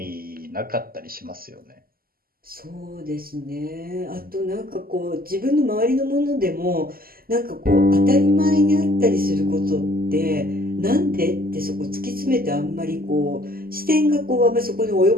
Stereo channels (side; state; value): left; late; 0.42 ms